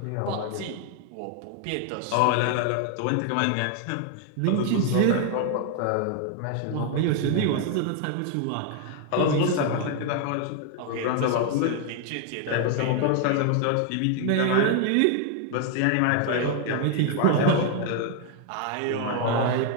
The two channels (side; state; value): both; different; correlation 0.00